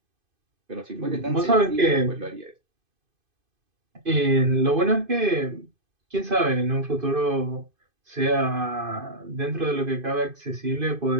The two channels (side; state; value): left; late; 2.5 ms